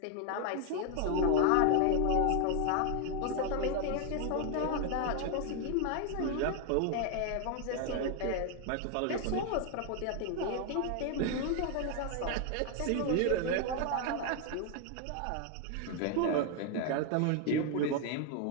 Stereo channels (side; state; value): both; different; correlation 0.00